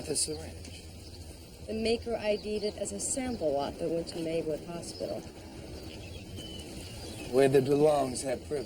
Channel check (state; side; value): identical; both; correlation 1.00